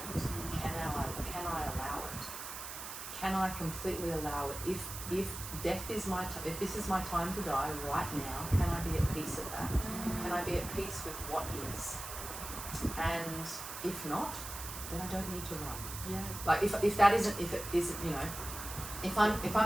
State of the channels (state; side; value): noise; right; hiss, 8 dB below the sound